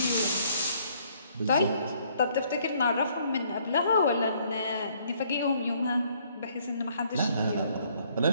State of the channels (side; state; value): both; inverted; correlation -0.65